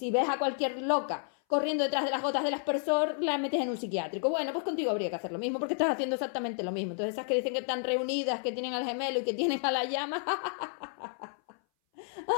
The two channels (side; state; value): right; silent; 57 dB below the other